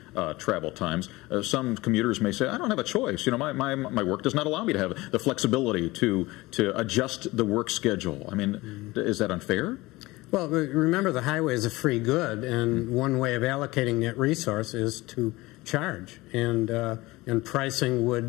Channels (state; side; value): quieter; right; 20.4 dB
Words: travel times, some commuters may say, I don't have a choice. You know, my work does not allow me to have the flexibility to adjust the work schedule. I mean, is that unfair? Well, remember the highway is a free good, and one way of allocating that resource is to charge, and pricing